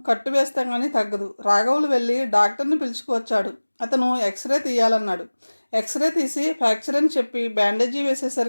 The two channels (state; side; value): inverted; both; correlation -1.00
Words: కట్టు వేస్తే కానీ తగ్గదు. రాఘవులు వెళ్ళి డాక్టర్ని పిలుచుకువచ్చాడు. అతను ఎక్స్రే తీయాలన్నాడు. ఎక్స్రే తీసి ఫ్రాక్చర్ అని చెప్పి బ్యాండేజీ